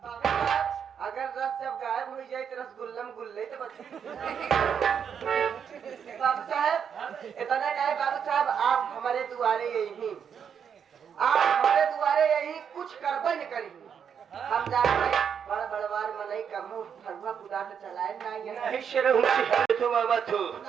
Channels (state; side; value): quieter; left; 7.5 dB